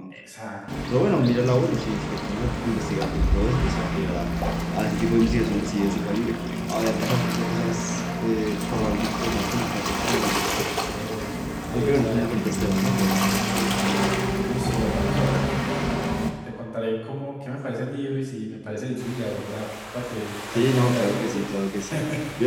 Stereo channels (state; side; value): identical; both; correlation 1.00